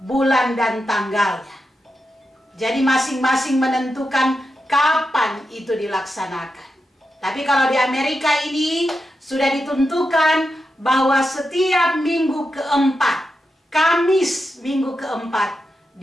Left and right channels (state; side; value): normal; both; correlation 0.88